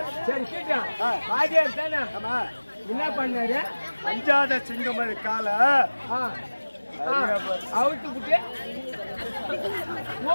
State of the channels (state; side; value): inverted; both; correlation -1.00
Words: சரி வாத்தியார் தானே. ஆமா என்ன பண்ணாரு? அஞ்சாத சிங்கம் காலை அவுத்து விட்டு